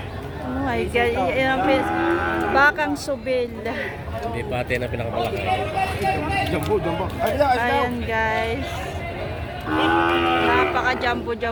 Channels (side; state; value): both; identical; correlation 1.00